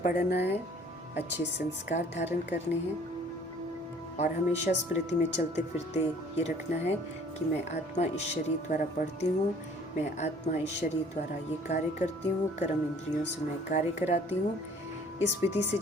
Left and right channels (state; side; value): normal; both; correlation 0.54